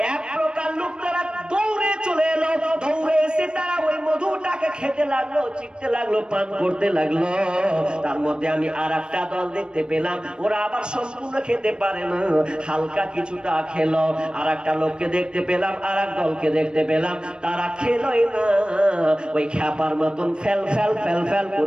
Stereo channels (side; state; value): left; late; 0.052 ms